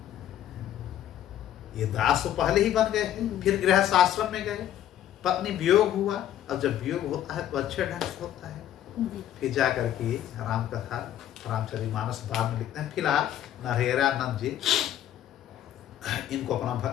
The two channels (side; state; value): right; quieter; 11.6 dB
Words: ये दास तो पहले ही बन गए हैं, फिर गृहस्थ आश्रम में गए, पत्नी वियोग हुआ। अब जब वियोग होता है तो अच्छे ढंग से होता है। फिर जा करके राम कथा, रामचरितमानस बाद में लिखते हैं। फिलहाल नरहरि आनंद जी इनको अपना